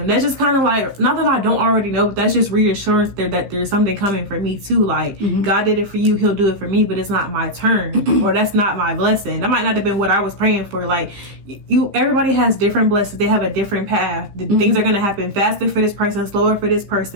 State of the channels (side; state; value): left; late; 15 ms